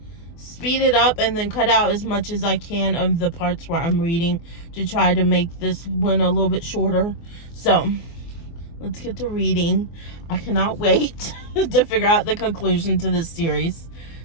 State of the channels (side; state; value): right; late; 24 ms